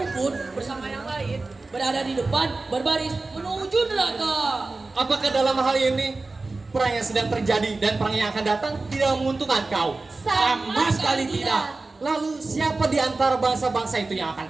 pun bersama yang lain berada di depan berbaris menuju neraka. Apakah dalam hal ini perang yang sedang terjadi dan perang yang akan datang tidak menguntungkan kau? Sama sekali tidak. Lalu siapa di antara bangsa-bangsa itu yang akan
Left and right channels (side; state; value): left; quieter; 3.5 dB